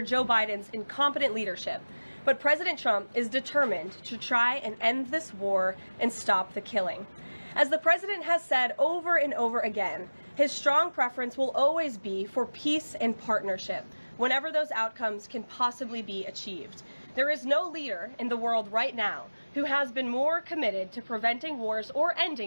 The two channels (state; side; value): inverted; both; correlation -1.00